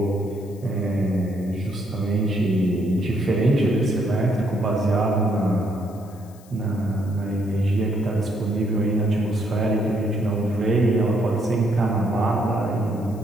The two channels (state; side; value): noise; left; hiss, 26 dB below the sound